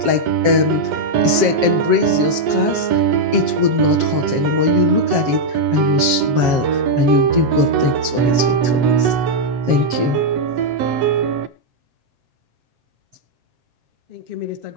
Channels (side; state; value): left; late; 7.5 ms